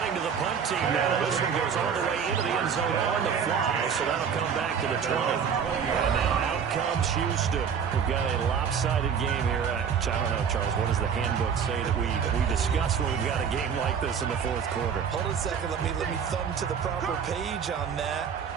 to the punt team now. This one goes all the way into the end zone on the fly, so that'll come back to the 20. And now out comes Houston. We've got a lopsided game here. I don't know, Charles, what does the handbook say that we discuss when we've got a game like this in the 4th quarter? Hold on a second. Let me thumb to the proper page on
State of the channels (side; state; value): left; quieter; 7.1 dB